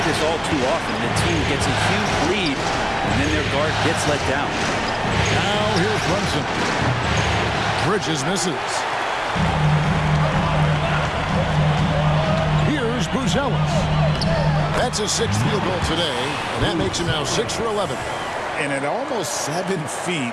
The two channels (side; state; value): both; identical; correlation 1.00